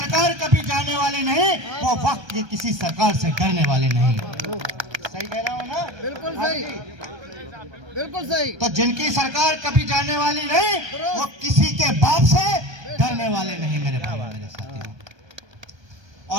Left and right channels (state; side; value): late; left; 1.3 ms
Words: कभी जाने वाली नहीं, वो वक्त की किसी सरकार से डरने वाले नहीं। सही कह रहा हूं ना? बिल्कुल सही, बिल्कुल सही। तो जिनकी सरकार कभी जाने वाली नहीं, वो किसी के बाप से डरने वाले नहीं मेरे भाई मेरे साथियों।